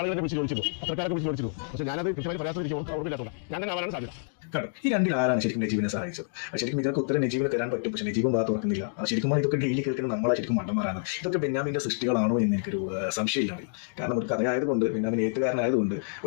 ആളുകളെ വിളിച്ച് ചോദിച്ചിട്ടുണ്ട്, അത്രക്കാരൊക്കെ വിളിച്ച് ചോദിച്ചിട്ടുണ്ട്. പക്ഷേ ഞാനത് കൃത്യമായി പറയാത്ത ഞാൻ ആവാനാണ് സാധ്യത. കാരണം ഈ രണ്ടിൽ ആരാണ് ശരിക്കും നജീബിനെ സഹായിച്ചത്? ശരിക്കും ഇതിനൊക്കെ ഉത്തരം നജീബിനെ തരാൻ പറ്റും, പക്ഷെ നജീബും ഭാഗത്ത് ഓർക്കുന്നില്ല. ശരിക്കും ഇതൊക്കെ ഡെയിലി കേൾക്കുന്ന നമ്മളെ ശരിക്കും മണ്ടന്മാരാണ്. ഇതൊക്കെ ബെന്യാമിന്റെ സൃഷ്ടികളാണോ എന്ന് എനിക്കൊരു സംശയമില്ല. കാരണം ഒരു കഥയായതുകൊണ്ട്, ബെന്യാമിൻ എഴുത്തുകാരനായതുകൊണ്ട്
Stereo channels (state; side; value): silent; right; digital silence